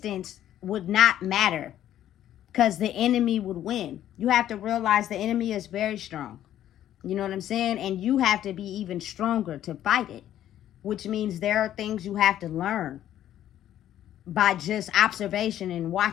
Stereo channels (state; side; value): quieter; right; 11.7 dB